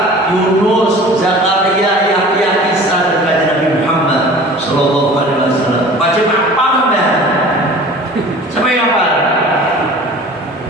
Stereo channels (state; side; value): normal; both; correlation 0.43